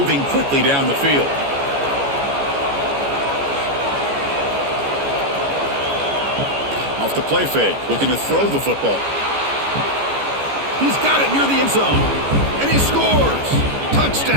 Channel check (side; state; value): left; late; 14 ms